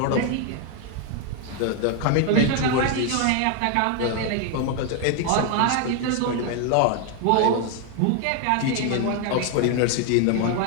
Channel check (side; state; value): both; different; correlation 0.00